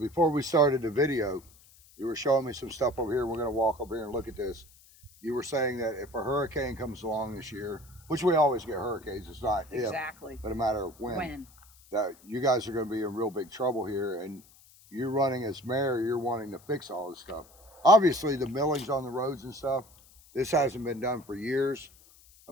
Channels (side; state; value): left; noise; hiss, 26 dB below the sound